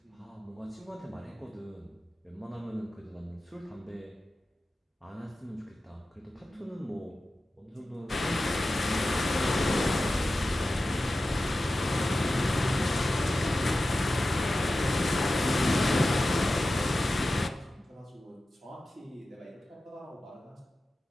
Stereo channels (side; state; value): both; normal; correlation 0.94